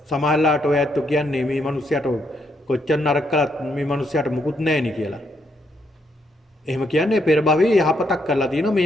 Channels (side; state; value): both; normal; correlation 0.76